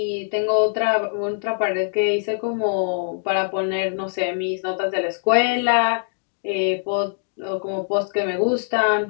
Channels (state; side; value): silent; right; digital silence